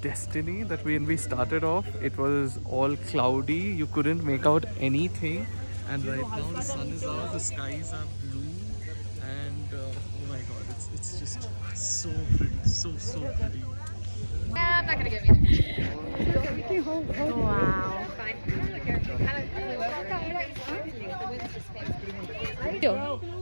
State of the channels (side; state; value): both; inverted; correlation -1.00